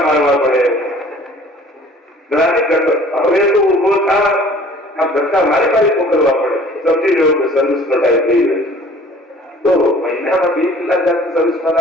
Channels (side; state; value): both; normal; correlation 0.51